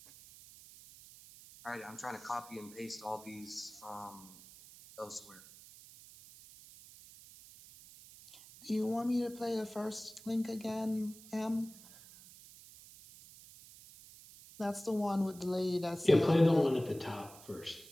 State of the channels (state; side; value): noise; right; hiss, 19 dB below the sound